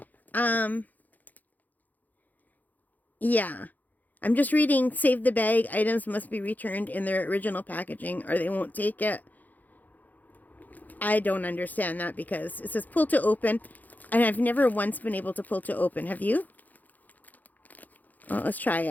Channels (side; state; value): right; late; 0.082 ms